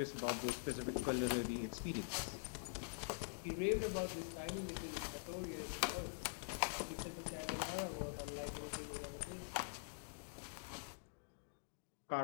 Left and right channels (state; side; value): silent; right; digital silence